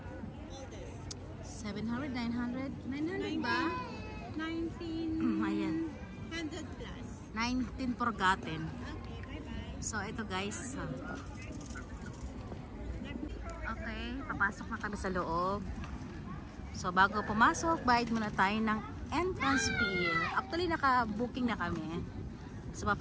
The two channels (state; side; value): identical; both; correlation 1.00